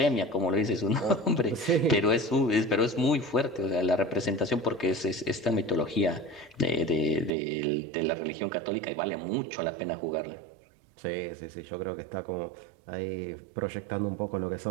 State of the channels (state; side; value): drops out; left; at 7.3 s